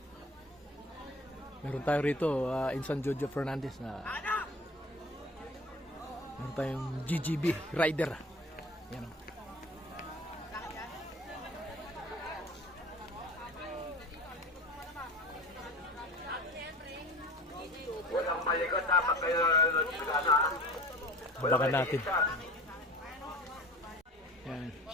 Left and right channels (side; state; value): both; normal; correlation 0.40